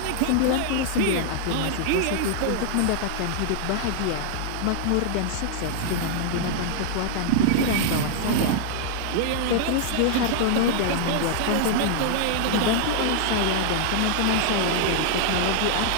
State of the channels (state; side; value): different; both; correlation 0.00